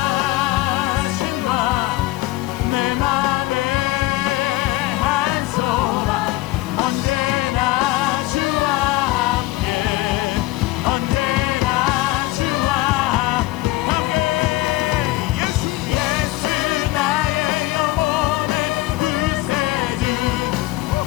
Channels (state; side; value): quieter; right; 18.0 dB